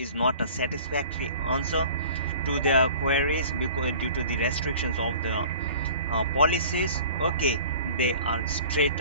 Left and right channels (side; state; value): both; inverted; correlation -0.45